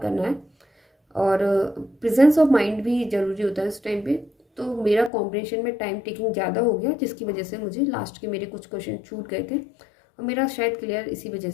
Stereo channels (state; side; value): drops out; right; at 5.1 s